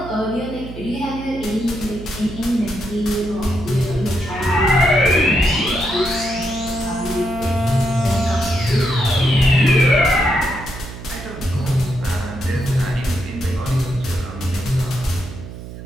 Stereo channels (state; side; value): noise; right; hum, 12 dB below the sound